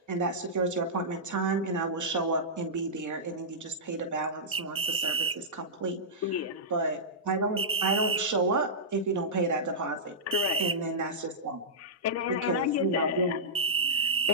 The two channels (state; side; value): normal; both; correlation -0.14